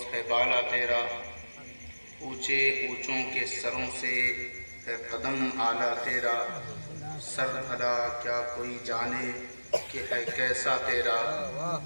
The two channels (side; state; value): both; inverted; correlation -1.00